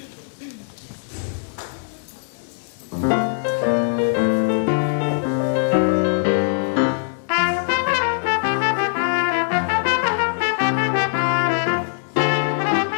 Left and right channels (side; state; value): right; silent; digital silence